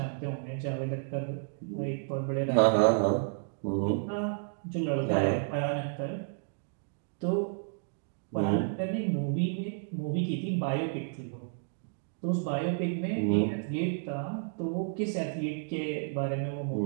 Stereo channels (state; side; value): silent; left; digital silence